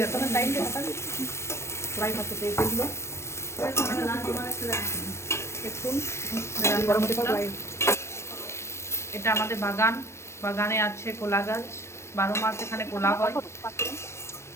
ফ্রাই করতে তেল দিল। দেখুন গরম হতে পারে। এটা আমাদের বাগান, বাগানে আছে কলা গাছ, 12 মাস এখানে কলা হয়।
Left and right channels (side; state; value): right; late; 0.13 ms